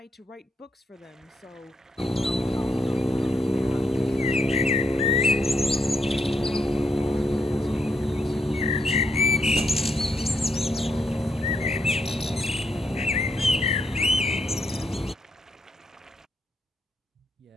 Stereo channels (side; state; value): both; normal; correlation 0.78